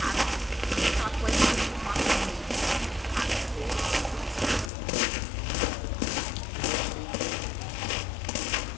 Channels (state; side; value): drops out; right; at 4.7 s